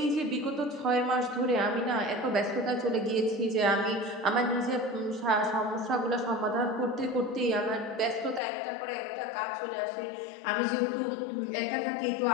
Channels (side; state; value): right; drops out; at 8.4 s